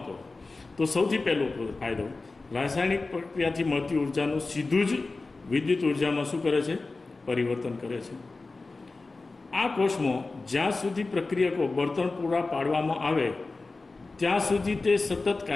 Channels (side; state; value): right; quieter; 3.6 dB